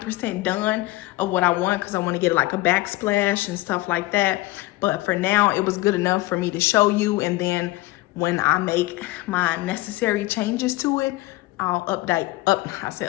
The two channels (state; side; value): quieter; right; 18.9 dB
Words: done of what I want, because I want to get like a backsplash and stuff like that. But for now, it was good enough for me to show you, and then when I make my necessary changes to it, I'll update.